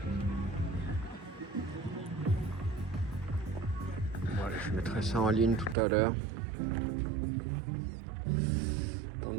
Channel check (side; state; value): left; drops out; at 5.8 s